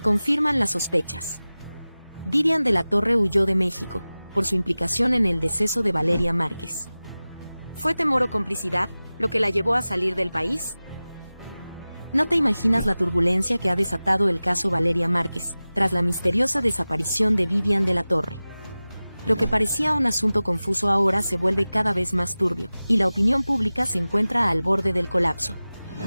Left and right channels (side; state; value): both; inverted; correlation -0.97